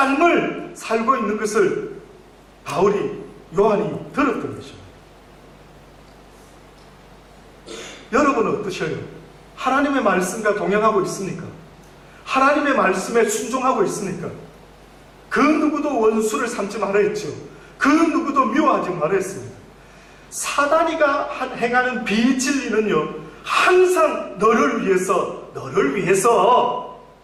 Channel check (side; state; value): both; identical; correlation 1.00